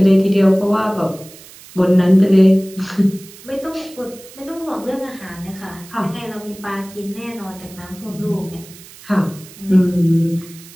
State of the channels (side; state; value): right; noise; hiss, 20 dB below the sound